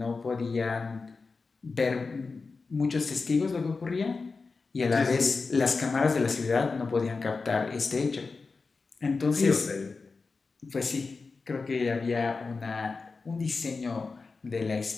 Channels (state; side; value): quieter; right; 4.3 dB